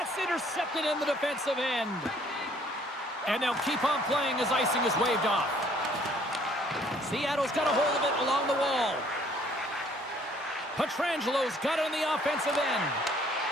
intercepted in the defensive end. And they'll keep on playing as icing is waved off. Seattle's got a hold of it along the wall. Pietrangelo's got it on the offensive end.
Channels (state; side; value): normal; both; correlation 0.61